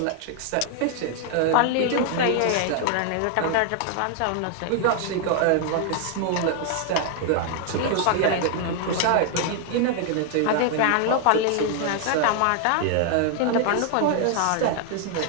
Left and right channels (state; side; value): different; both; correlation 0.00